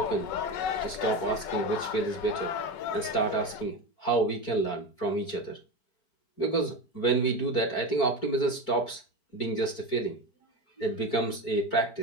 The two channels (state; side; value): late; right; 4.5 ms